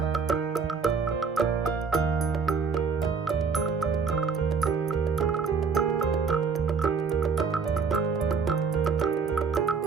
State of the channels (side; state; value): left; quieter; 5.4 dB